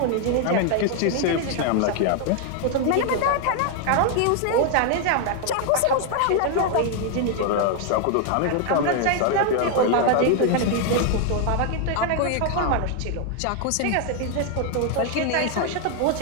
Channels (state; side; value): different; both; correlation 0.00